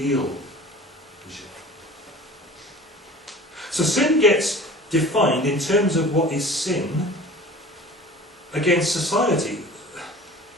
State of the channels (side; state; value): both; normal; correlation 0.42